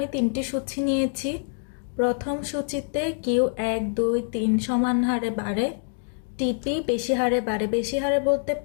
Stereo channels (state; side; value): silent; right; 61 dB below the other